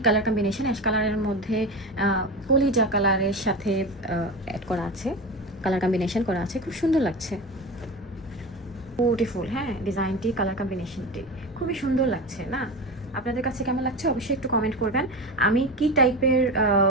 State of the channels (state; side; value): normal; both; correlation 0.25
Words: কালার কম্বিনেশন, অ্যাশ কালারের মধ্যে কলিজা কালারের সাথে অ্যাড করা আছে, কালার কম্বিনেশন করা আছে, খুব সুন্দর লাগছে, বিউটিফুল। হ্যাঁ, ডিজাইনটি, কালার কম্বিনেশনটি খুবই সুন্দর লাগছে না? আপনাদের কাছে কেমন লাগছে অবশ্যই একটু কমেন্ট করবেন। আমি কি টাইপের